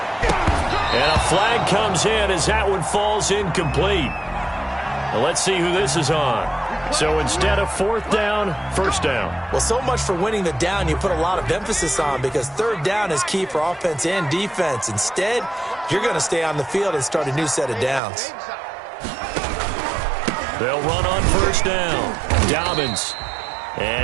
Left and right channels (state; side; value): drops out; left; at 18.0 s